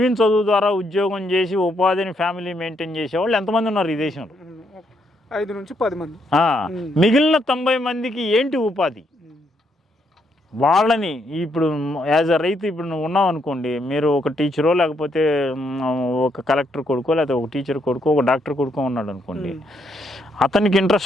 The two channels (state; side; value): normal; both; correlation 0.75